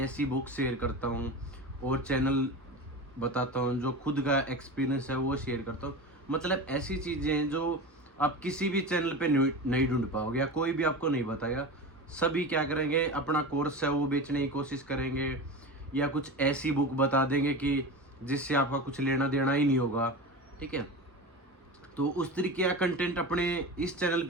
बुक शेयर करता हूँ और चैनल बताता हूँ, जो खुद का एक्सपीरियंस है वो शेयर करता हूँ। मतलब ऐसी चीज़ें हैं जो आप किसी भी चैनल पे नहीं ढूंढ पाओगे या कोई भी आपको नहीं बताएगा। सभी क्या करेंगे, अपना कोर्स है वो बेचने की कोशिश करेंगे या कुछ ऐसी बुक बता देंगे कि जिससे आपका कुछ लेना देना ही नहीं होगा। ठीक है, तो उस तरीके का कंटेंट अपने इस चैनल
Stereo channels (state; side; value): normal; both; correlation 0.27